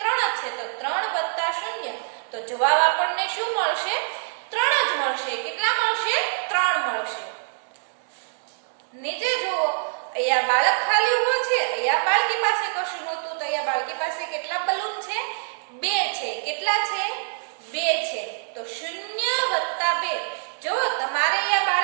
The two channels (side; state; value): left; silent; digital silence